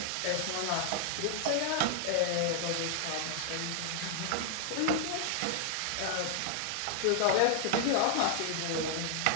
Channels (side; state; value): both; different; correlation 0.00